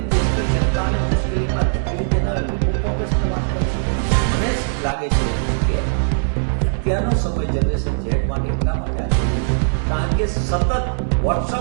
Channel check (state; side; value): silent; left; digital silence